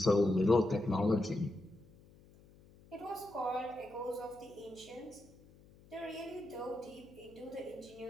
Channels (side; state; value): left; noise; hum, 24 dB below the sound